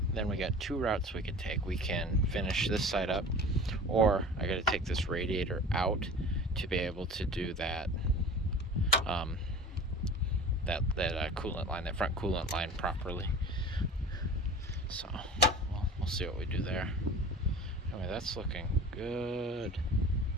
then we got two routes we could take. We can finish this side up, or I gotta take this radiator out to be able to do that coolant line, that front coolant line properly. So we'll see what we do there. Anyway, that's looking good.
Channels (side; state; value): both; normal; correlation 0.38